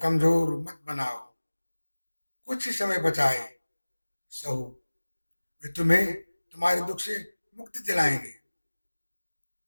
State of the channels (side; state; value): both; inverted; correlation -1.00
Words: मत बनाओ, कुछ ही समय बचा है। सहो, वे तुम्हें तुम्हारे दुख से मुक्ति दिलाएंगे।